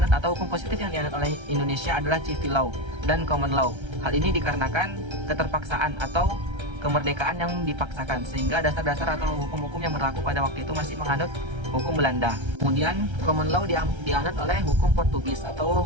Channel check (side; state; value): left; late; 1.3 ms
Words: atau hukum positif yang dianut oleh Indonesia adalah civil law dan common law. Hal ini dikarenakan keterpaksaan atau kemerdekaan yang dipaksakan, sehingga dasar-dasar atau hukum-hukum yang berlaku pada waktu itu masih menganut hukum Belanda. Kemudian common law dianut oleh hukum Portugis